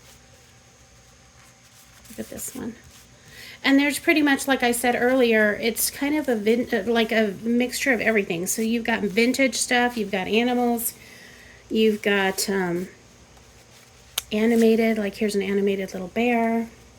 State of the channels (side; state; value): both; identical; correlation 1.00